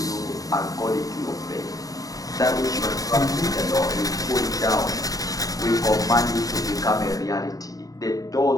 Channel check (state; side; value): late; right; 0.17 ms